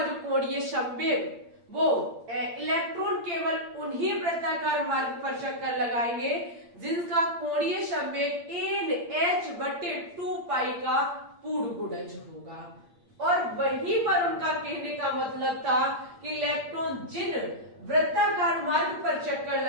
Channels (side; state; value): left; late; 8.7 ms